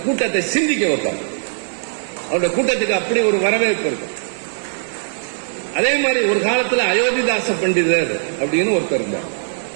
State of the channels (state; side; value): silent; left; 66 dB below the other